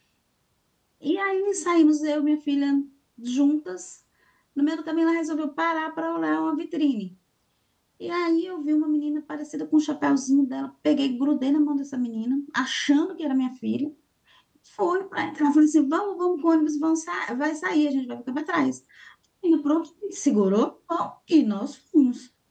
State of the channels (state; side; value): identical; both; correlation 1.00